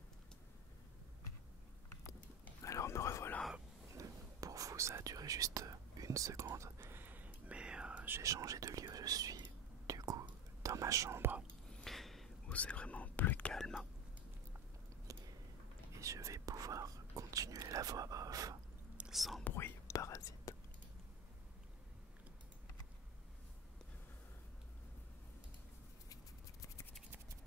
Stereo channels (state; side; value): normal; both; correlation 0.23